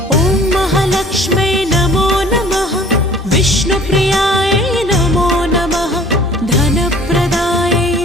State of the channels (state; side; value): normal; both; correlation 0.51